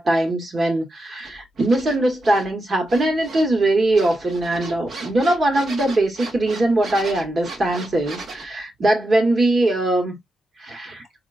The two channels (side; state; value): both; normal; correlation 0.87